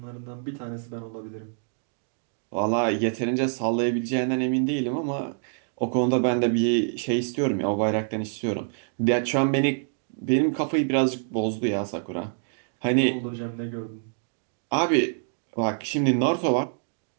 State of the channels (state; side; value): silent; left; digital silence